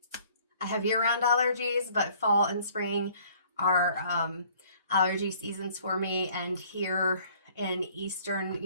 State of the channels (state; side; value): inverted; both; correlation -0.57